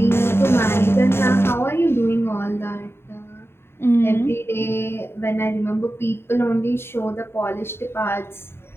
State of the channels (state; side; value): late; right; 0.11 ms